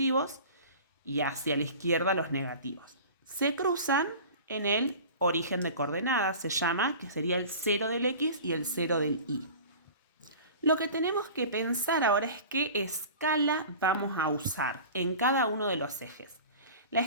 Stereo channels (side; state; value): both; inverted; correlation -0.39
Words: y hacia la izquierda los negativos. Se cruzan en el origen de coordenadas, se llama, que sería el 0 del X y el 0 del Y. Lo que tenemos que pensar ahora es qué escala vamos a usar en cada uno de los ejes. La